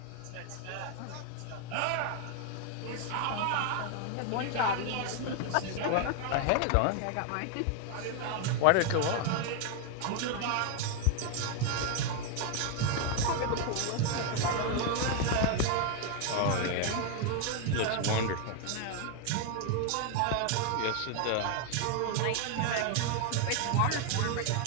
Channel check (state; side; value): different; both; correlation 0.01